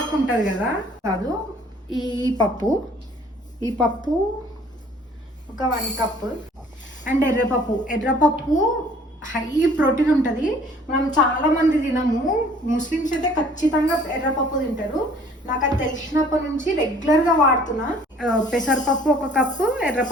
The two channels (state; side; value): normal; both; correlation 0.55